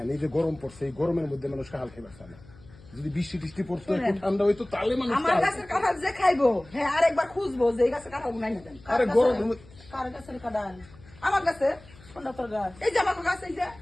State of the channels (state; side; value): noise; left; hum, 23 dB below the sound